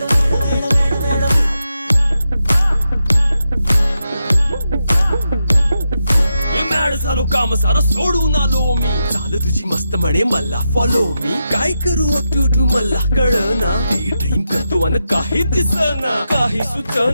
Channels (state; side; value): inverted; both; correlation -0.87